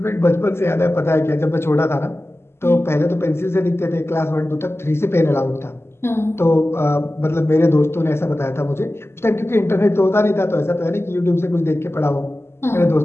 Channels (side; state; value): right; late; 0.12 ms